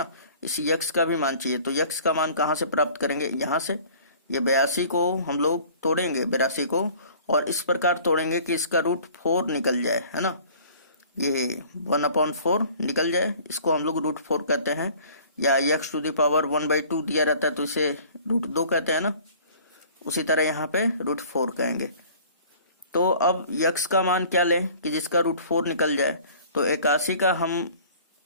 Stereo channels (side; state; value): both; inverted; correlation -0.50